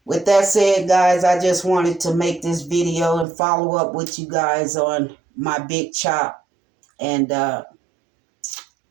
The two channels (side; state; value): left; drops out; at 3.2 s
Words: with that said, guys, I just wanted to make this video and follow up with you guys on my big chop. And to